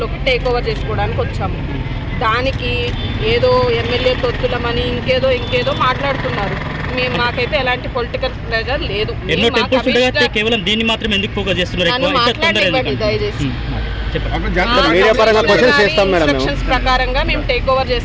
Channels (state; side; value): identical; both; correlation 1.00